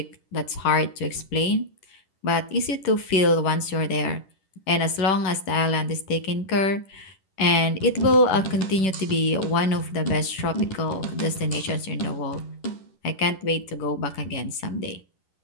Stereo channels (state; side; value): late; right; 11 ms